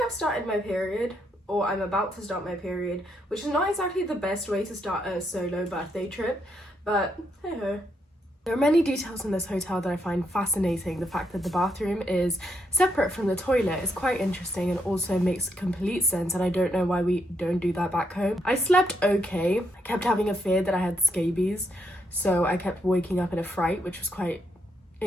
I've started my period, or I'm about to start my period, which is not exactly the best way to start a solo birthday trip, but hey ho. There are many details in this hotel that I find fascinating. The fact that the bathroom is separate from the toilet is quite interesting and also makes complete sense, and I don't know why we don't do that back home. I slept okay. I kept having a fear that I had scabies, so I kept waking up in a fright, which was quite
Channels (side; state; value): both; normal; correlation 0.77